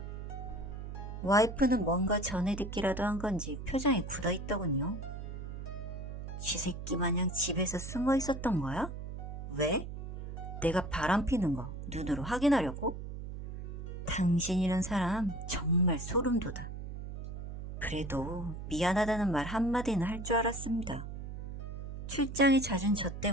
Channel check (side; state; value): right; noise; hum, 8 dB below the sound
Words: 와이프는 뭔가 전에 듣기라도 한 건지 표정이 굳어있더군요. 쥐새끼 마냥 집에서 숨어 있었던 거야? 왜? 내가 바람 피는 거 눈으로 확인하려고? 당신이란 사람 정말 소름 돋아. 그래도 미안하다는 말 한마디는 할 줄 알았습니다. 출장이 잦은 저